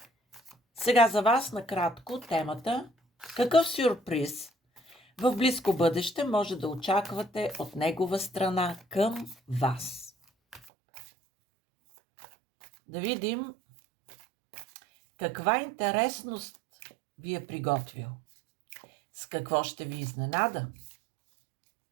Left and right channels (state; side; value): drops out; left; at 10.7 s